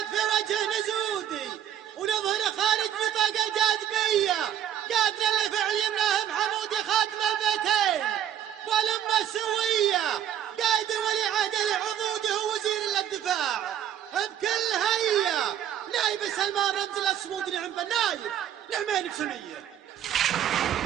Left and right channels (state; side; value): quieter; left; 10.4 dB